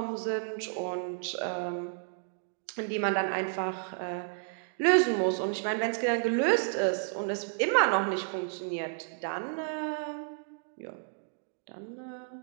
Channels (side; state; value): left; silent; digital silence